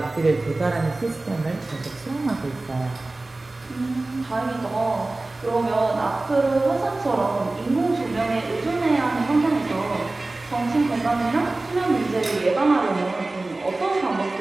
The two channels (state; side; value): quieter; left; 3.0 dB